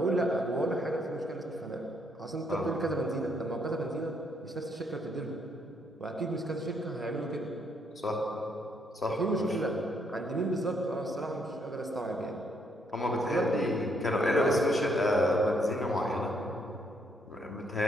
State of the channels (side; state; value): both; normal; correlation 0.72